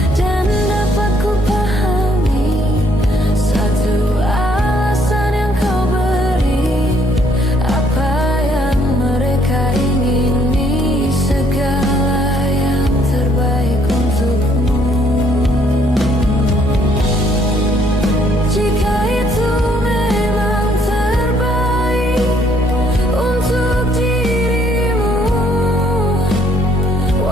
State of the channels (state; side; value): normal; both; correlation 0.66